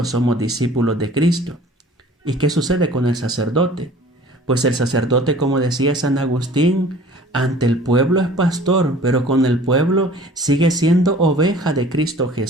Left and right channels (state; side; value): normal; both; correlation 0.48